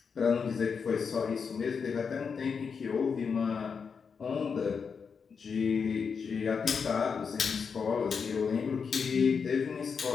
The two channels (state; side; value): quieter; right; 5.9 dB